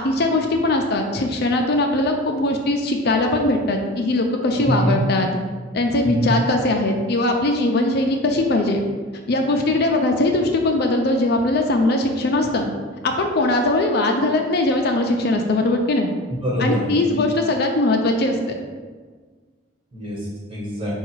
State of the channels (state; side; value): normal; both; correlation 0.33